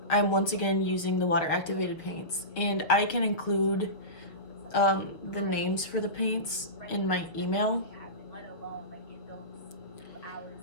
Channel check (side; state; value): right; late; 6.2 ms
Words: I'm once again using the water activated paints, and I can include the names for the paints in my email.